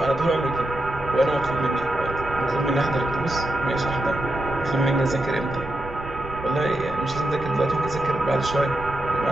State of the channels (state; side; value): noise; right; rumble, 13 dB below the sound